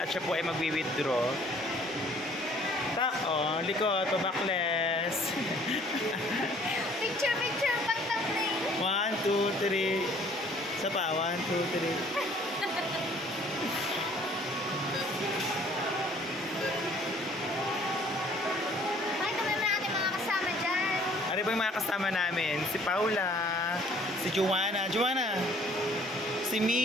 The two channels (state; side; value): normal; both; correlation 0.57